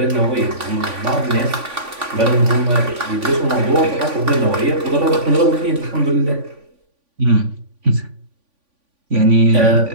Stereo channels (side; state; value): left; late; 3.5 ms